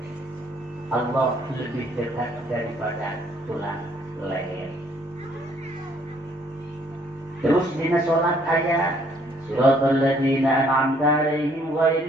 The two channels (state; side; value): normal; both; correlation 0.64